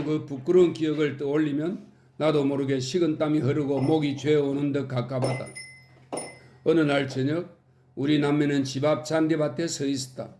그 부끄러운 기억을 떠올리면 나도 모르게 식은땀이 흐르고 목이 죄어오는 듯 갑갑하다. 어느 날 저녁 우리 남매는 집 앞 잔디밭에 서 있었다.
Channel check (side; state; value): both; identical; correlation 1.00